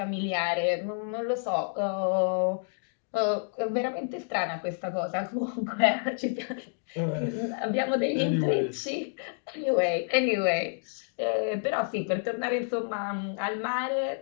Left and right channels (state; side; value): silent; right; digital silence